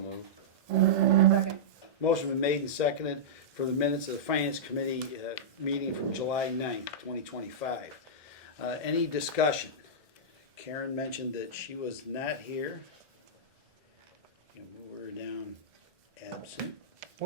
Second. Motion been made and seconded for the minutes of the Finance Committee meeting from July 9th, 2025. Any discussion? Karen mentioned that she was not here. And move her down absent.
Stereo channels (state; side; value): normal; both; correlation -0.13